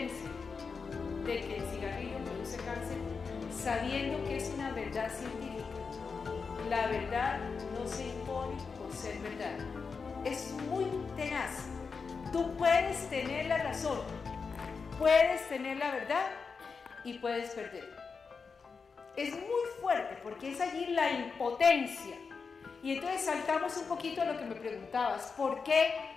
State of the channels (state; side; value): quieter; right; 5.1 dB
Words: de que el cigarrillo produce cáncer sabiendo que es una verdad científica? La verdad no se impone por ser verdad. Es muy tenaz. Tú puedes tener la razón, puedes tener la verdad y puedes perder. Es muy fuerte porque es allí la impotencia. Y entonces saltamos un poquito a lo que me preguntabas. ¿Por qué